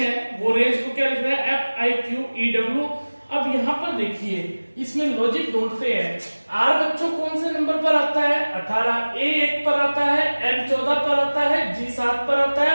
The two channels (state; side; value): inverted; both; correlation -1.00